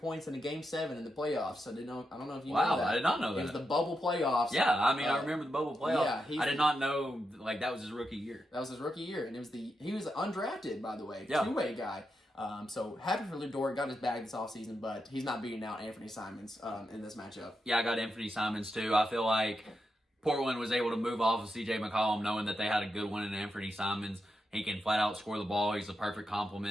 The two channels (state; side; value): normal; both; correlation 0.86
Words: in a Game 7 in the playoffs. I don't know if you know that. Wow, I did not know that. It was the bubble playoffs. Yeah, I mean, I remember the bubble playoffs. Yeah, I did not know, that was his rookie year. That was his rookie year, and he was undrafted, by the way, yeah. 2-way guy. So happy for Lou Dort, got his bag this offseason, but he's not beating out Anthony Simons in this matchup. Yeah, I got Anthony Simons too. I feel like Portland was able to move off of C.J. McCollum knowing that they had a good one in Anthony Simons. He can flat out score the ball. He's a perfect